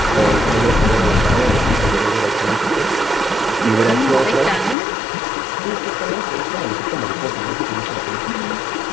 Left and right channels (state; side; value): drops out; right; at 4.8 s